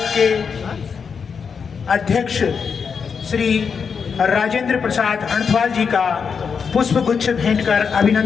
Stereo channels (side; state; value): right; quieter; 6.1 dB